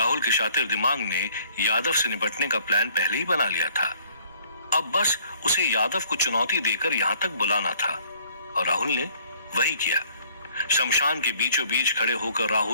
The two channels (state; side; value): inverted; both; correlation -0.60